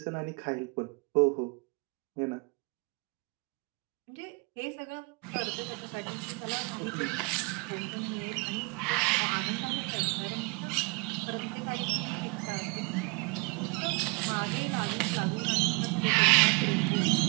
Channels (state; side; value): quieter; left; 28.8 dB